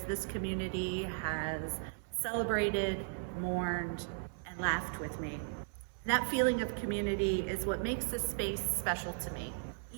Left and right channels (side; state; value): left; silent; 54 dB below the other